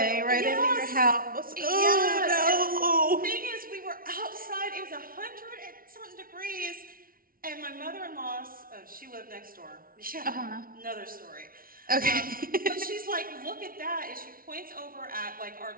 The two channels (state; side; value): late; left; 0.42 ms